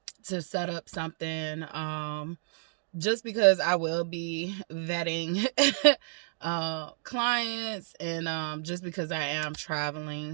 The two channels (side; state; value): left; silent; digital silence